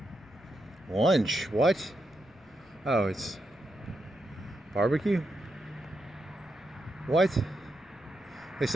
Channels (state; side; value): noise; left; rumble, 28 dB below the sound